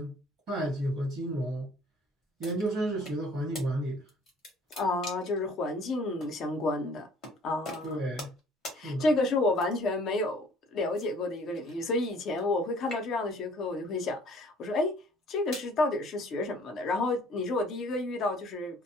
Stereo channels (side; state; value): both; normal; correlation 0.55